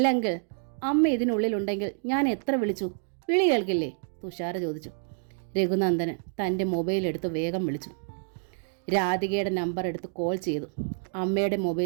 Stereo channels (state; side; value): silent; left; digital silence